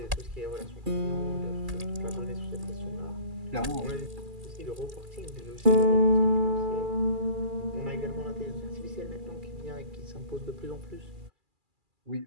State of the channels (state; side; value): late; left; 2.4 ms